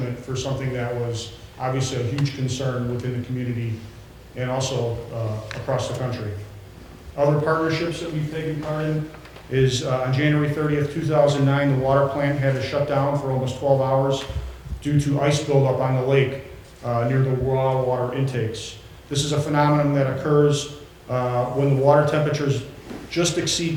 for something that was obviously a huge concern within the community and also across the country. Other partnerships that we've taken part in is on January 30th, 2009, the water plant had to shut down for almost 12 hours due to ice buildup on the lake near the raw water intakes. This is a phenomenon that occurs when the water temperatures just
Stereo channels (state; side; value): identical; both; correlation 1.00